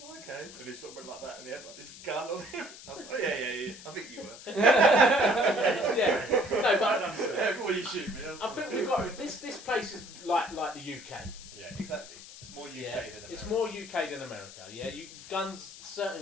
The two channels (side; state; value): left; noise; hiss, 16 dB below the sound